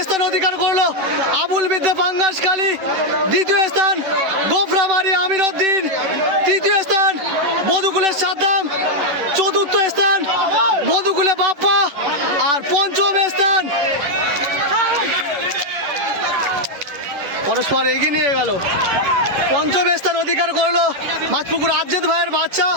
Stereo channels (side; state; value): left; late; 10 ms